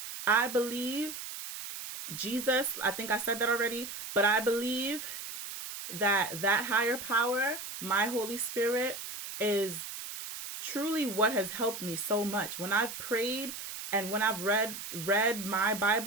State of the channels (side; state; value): right; noise; hiss, 8 dB below the sound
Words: I believe Jesus, I think I said that already, but I believe that that higher power, my Holy Spirit, is truly what has helped me so much. When I've prayed and when I've read my